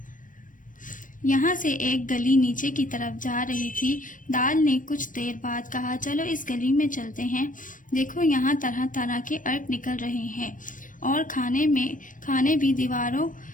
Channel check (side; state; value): right; late; 0.38 ms